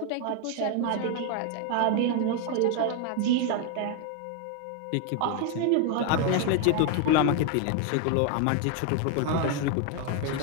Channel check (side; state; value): both; different; correlation 0.01